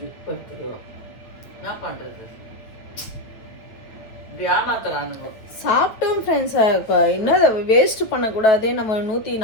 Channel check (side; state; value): right; late; 8.9 ms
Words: படுத்துருவோம். என்ன பண்ணுறது? இப்படி ஏமாத்துறானுங்க. சாப்பிட்டோம் ஃப்ரெண்ட்ஸ். இன்னும் அதை வேஸ்ட்டு பண்ணக்கூடாது. நம்ம